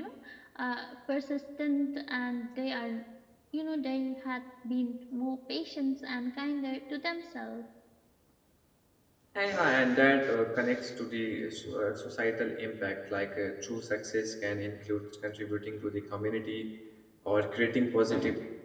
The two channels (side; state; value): both; identical; correlation 1.00